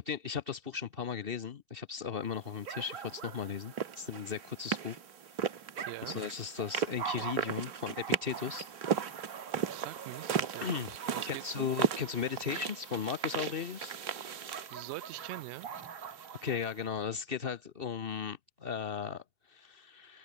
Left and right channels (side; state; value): left; late; 3.3 ms